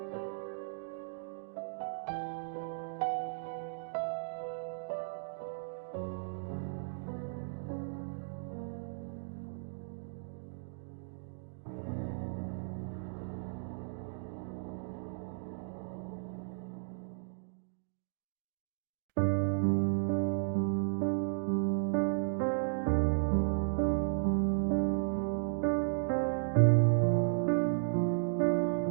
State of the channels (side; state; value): left; silent; digital silence